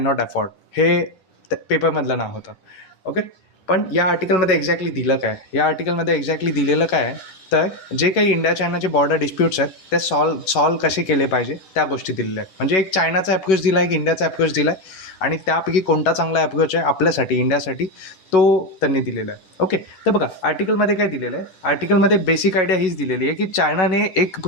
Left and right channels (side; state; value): right; late; 11 ms